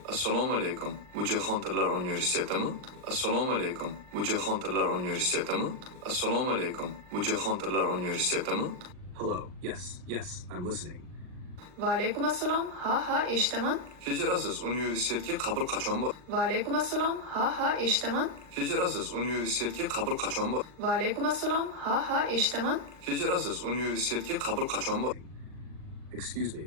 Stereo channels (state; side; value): late; left; 39 ms